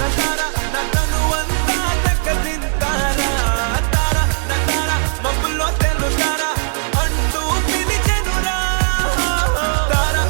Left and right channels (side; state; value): left; silent; digital silence